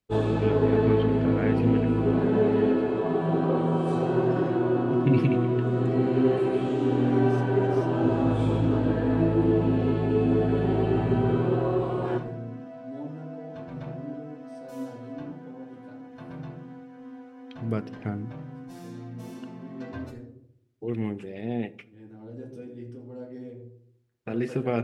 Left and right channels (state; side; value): identical; both; correlation 1.00